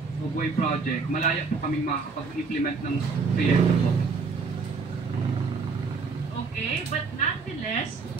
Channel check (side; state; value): left; quieter; 4.7 dB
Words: of way project, malaya po kaming makakapag-implement ng proyekto po. Okay, but nonetheless,